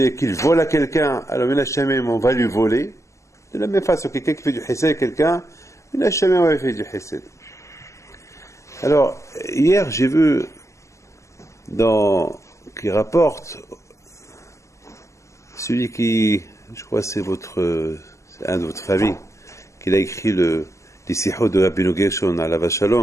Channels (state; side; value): late; right; 0.14 ms